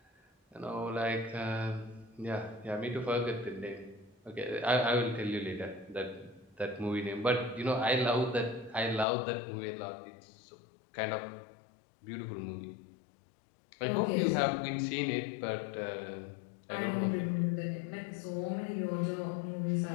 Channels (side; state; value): right; drops out; at 9.1 s